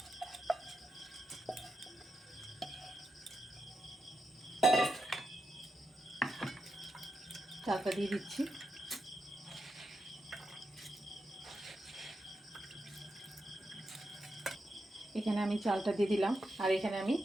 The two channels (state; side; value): normal; both; correlation 0.86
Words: চালটা দিয়ে দিচ্ছি। এখানে আমি চালটা দিয়ে দিলাম, আর এখানে আমি